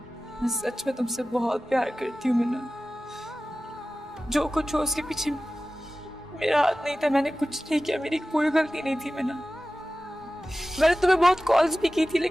मैं सच में तुमसे बहुत प्यार करती हूँ मीना। जो कुछ हो उसके पीछे मेरा हाथ नहीं था, मैंने कुछ नहीं किया, मेरी कोई गलती नहीं थी मीना। मैंने तुम्हें बहुत कॉल्स भी की थी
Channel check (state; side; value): normal; both; correlation 0.96